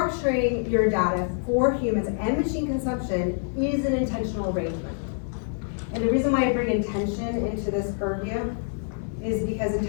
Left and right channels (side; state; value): right; silent; 61 dB below the other